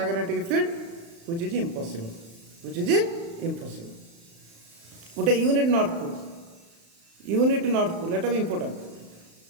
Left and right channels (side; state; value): left; late; 35 ms